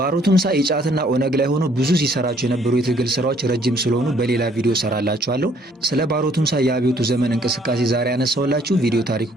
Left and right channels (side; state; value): both; normal; correlation 0.63